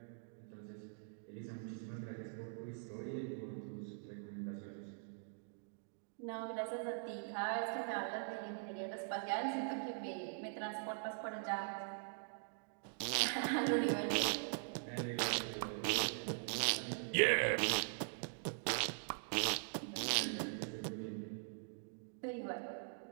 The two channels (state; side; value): silent; left; digital silence